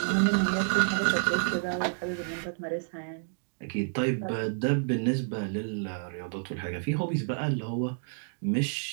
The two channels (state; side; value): silent; left; digital silence